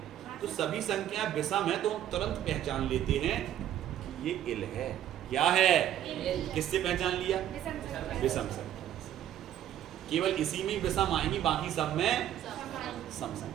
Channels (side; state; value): left; quieter; 11.5 dB